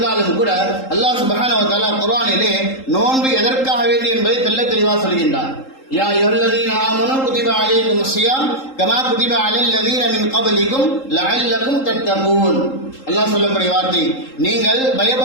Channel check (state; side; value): late; right; 3.8 ms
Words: கூட அல்லாஹ் சுப்ஹானஹு வ தஆலா குர்ஆனிலே நோன்பு எதற்காக வேண்டி என்பதை தெள்ள தெளிவாக சொல்கின்றார். யா அய்யுஹல்லதீன ஆமனூ குதிப அலைக்குமுஸ் ஸியாம் கமா குதிப அலல்லதீன மின் கப்லிக்கும் லஅல்லக்கும் தத்தகூன். அல்லாஹ் சொல்லக்கூடிய வார்த்தை, நீங்கள்